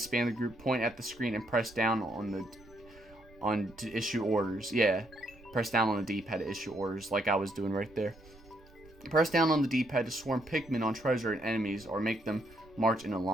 the group. Point at the screen and press down to issue orders. Yeah. Press down on the D-pad to issue orders, like I was doing right there. Press down on the D-pad to swarm Pikmin on treasure and enemies, or make them march in a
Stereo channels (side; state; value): right; noise; rumble, 24 dB below the sound